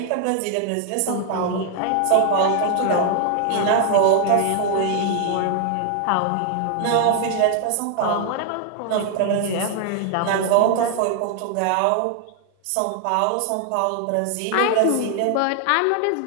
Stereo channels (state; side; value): different; both; correlation 0.00